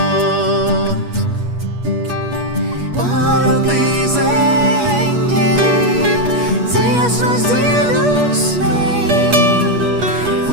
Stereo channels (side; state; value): left; late; 8.4 ms